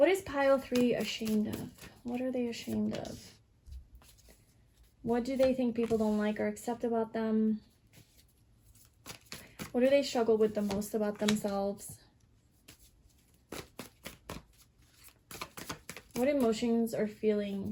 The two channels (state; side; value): identical; both; correlation 1.00